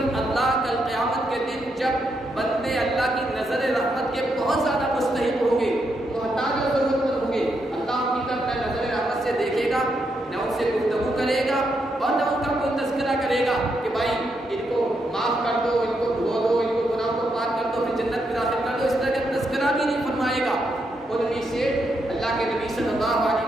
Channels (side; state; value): both; normal; correlation 0.80